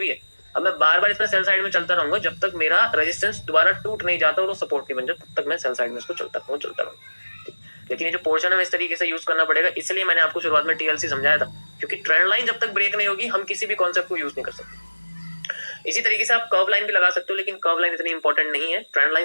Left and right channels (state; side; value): inverted; both; correlation -1.00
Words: ही है, अब मैं बार बार इसमें सेल साइड में चलता रहूंगा जब तक मेरा रेजिस्टेंस दोबारा टूट नहीं जाता और वो सपोर्ट नहीं बन जाता, तब तक मैं सेल साइड में इसको चलता रहूंगा। लेकिन ये जो पोर्शन है इस तरीके से यूज करना पड़ेगा, इसलिए मैंने आपको शुरुआत में टीएलसी समझाया था, क्योंकि ट्रेंड लाइन जब तक ब्रेक नहीं होगी हम किसी भी कॉन्सेप्ट को यूज नहीं कर सकते। इसी तरीके से आप कर्व लाइन भी लगा सकते हो, लेकिन कर्व लाइन इतनी इंपॉर्टेंट नहीं है, ट्रेंड लाइन